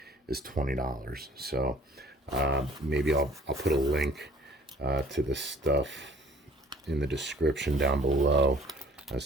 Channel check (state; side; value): normal; both; correlation 0.53